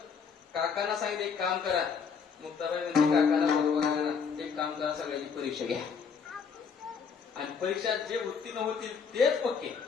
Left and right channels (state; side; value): quieter; right; 6.1 dB